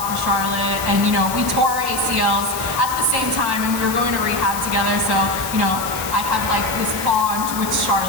for Charlotte, and we tore our ACLs at the same time, and we were going to rehab together. So I have this bond with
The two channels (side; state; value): left; noise; hiss, 8 dB below the sound